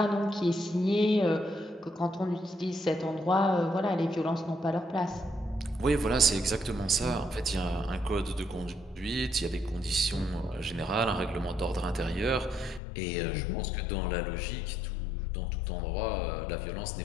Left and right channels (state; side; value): drops out; right; at 12.8 s